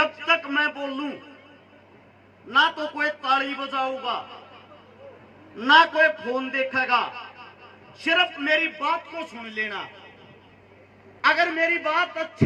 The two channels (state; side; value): identical; both; correlation 1.00